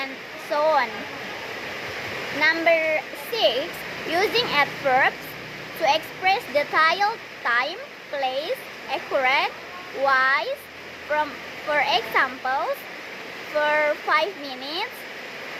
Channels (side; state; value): both; identical; correlation 1.00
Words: so on. Number 6, using adverbs to express detailed time, place, accurate, wise, for examples, for 5 minutes,